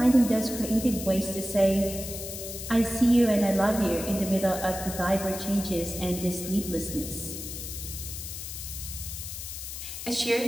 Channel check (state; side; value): noise; left; hiss, 8 dB below the sound